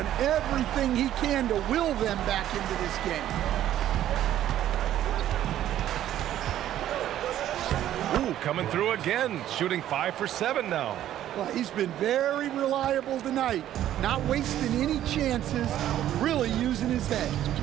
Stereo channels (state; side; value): quieter; left; 12.1 dB